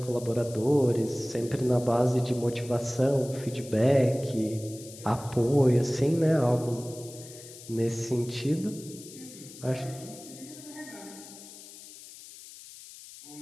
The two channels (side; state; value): left; noise; hiss, 17 dB below the sound